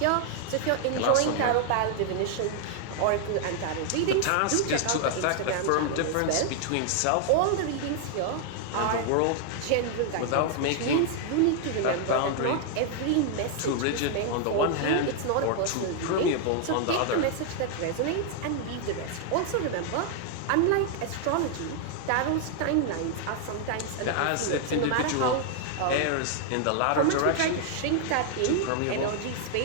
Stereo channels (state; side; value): different; both; correlation 0.00